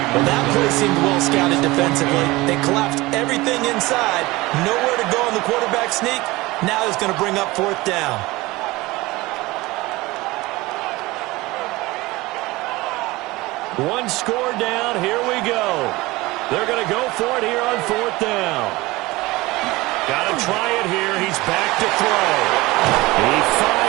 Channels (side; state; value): left; quieter; 20.7 dB